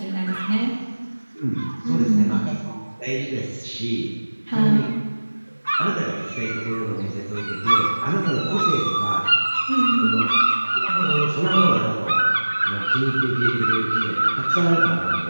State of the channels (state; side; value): inverted; both; correlation -1.00